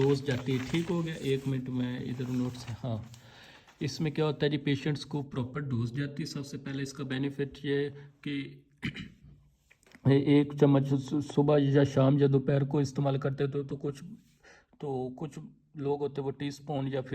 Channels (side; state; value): both; identical; correlation 1.00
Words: जाती है। ठीक हो गया, एक मिनट में इधर नोट्स है। हाँ, इसमें क्या होता है जी, पेशेंट्स को प्रॉपर डोज जाती है। सबसे पहले इसका बेनिफिट ये कि एक चम्मच सुबह या शाम या दोपहर को इस्तेमाल करते तो कुछ लोग होते हैं वो टी स्पून या